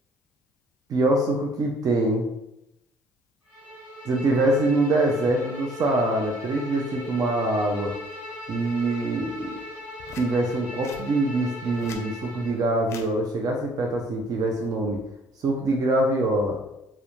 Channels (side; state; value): both; normal; correlation 0.60